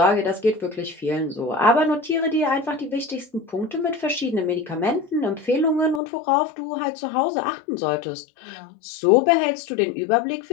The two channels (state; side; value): drops out; right; at 6.0 s